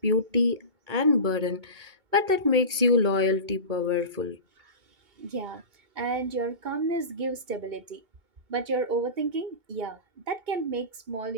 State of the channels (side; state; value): left; late; 2.2 ms